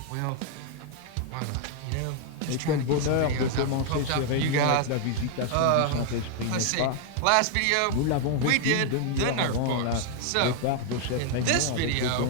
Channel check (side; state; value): both; different; correlation 0.00